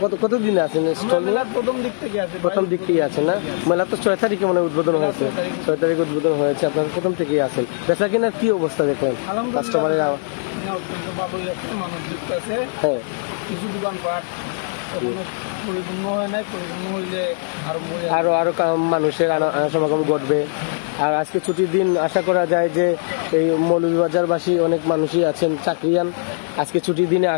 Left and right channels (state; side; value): silent; right; digital silence